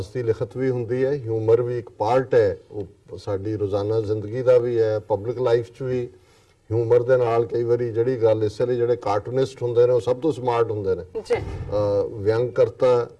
ਦੀ ਲਿਖਤ ਵੀ ਹੁੰਦੀ ਹੈ, ਹਿਊਮਰ ਵੀ ਇੱਕ ਪਾਰਟ ਹੈ, ਉਹ ਸਾਡੀ ਰੋਜ਼ਾਨਾ ਜ਼ਿੰਦਗੀ ਦਾ ਵੀ ਹੈ, ਪਬਲਿਕ ਲਾਈਫ 'ਚ ਵੀ ਹਿਊਮਰ ਦੇ ਨਾਲ ਕਈ ਵਾਰੀ ਜਿਹੜੀ ਗੱਲ ਇਸ ਲਈ ਜਿਹੜੇ ਕਾਰਟੂਨਿਸਟ ਹੁੰਦੇ ਨੇ ਉਹ ਸਭ ਤੋਂ ਸਮਾਰਟ ਹੁੰਦੇ ਨੇ। ਵਿਅੰਗ ਕਰਤਾ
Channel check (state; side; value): identical; both; correlation 1.00